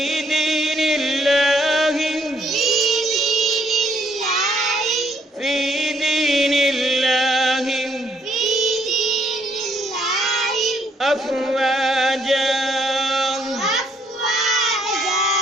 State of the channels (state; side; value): normal; both; correlation 0.69